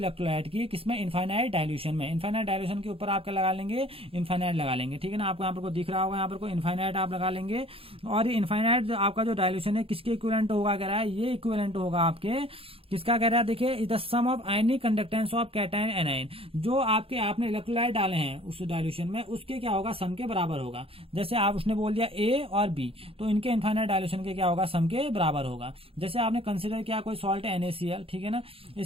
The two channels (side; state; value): left; late; 0.27 ms